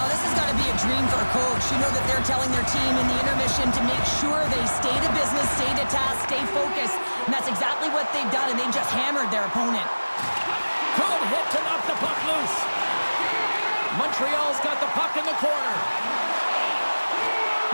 this has got to be a dream for a coach. You know that they're telling their team in the intermission to make sure they stay to business, stay to task, stay focused. And that's exactly what they've done, and they've just hammered their opponent. Good hit to knock the puck loose. Montreal's got the puck in the corner.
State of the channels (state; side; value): inverted; both; correlation -1.00